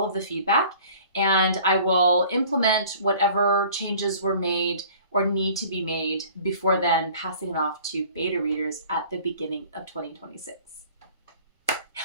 of the feedback, and I will implement whatever changes were made or need to be made before then, passing it off to beta readers at the beginning of 2026.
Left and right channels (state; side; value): inverted; both; correlation -0.49